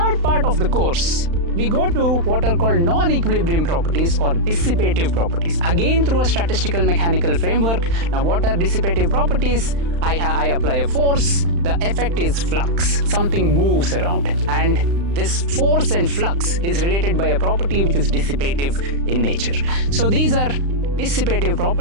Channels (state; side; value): late; left; 35 ms